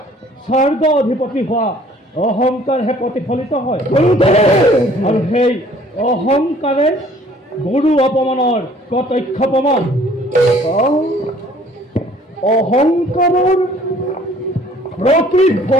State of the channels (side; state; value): both; normal; correlation 0.55